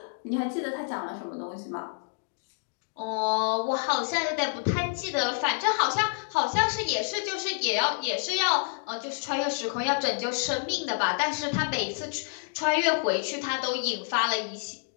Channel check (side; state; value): right; silent; 59 dB below the other